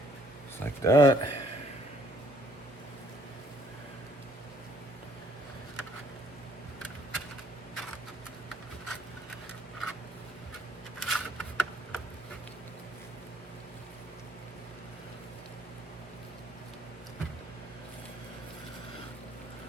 Just like that.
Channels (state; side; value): normal; both; correlation 0.63